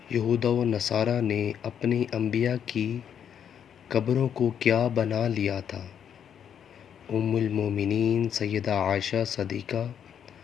یہود و نصارہ نے اپنی انبیاء کی قبروں کو کیا بنا لیا تھا؟ ام المومنین سیدہ عائشہ صدیقہ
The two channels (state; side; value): quieter; right; 8.6 dB